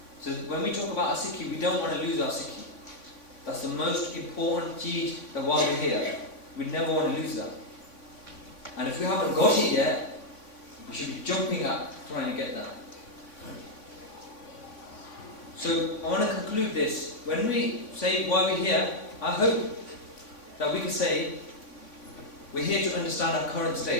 So when we talk about our Sikhi, we don't want to lose our Sikhi. That's the most important cheez that while we're here, we never want to lose that. And if we haven't got it yet, we should be jumping up trying to get that. So I want to conclude this. When we say why we're here, I hope that we can say we're here to understand our current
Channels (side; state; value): right; late; 3.5 ms